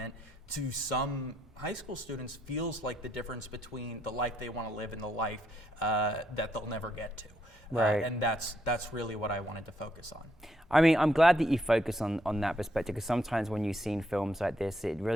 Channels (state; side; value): normal; both; correlation 0.75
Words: to some high school students feels like the difference between the life they want to live and the life that they'll never get to. Right. And that's really what I wanted to focus on. I mean, I'm glad that you focus on that perspective, because sometimes when you've seen films like this, it